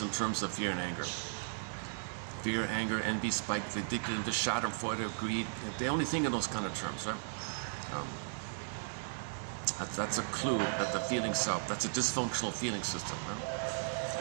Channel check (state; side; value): silent; left; digital silence